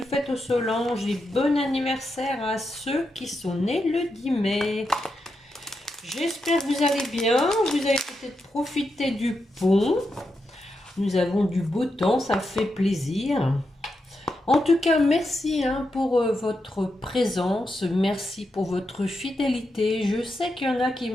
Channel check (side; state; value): both; normal; correlation 0.86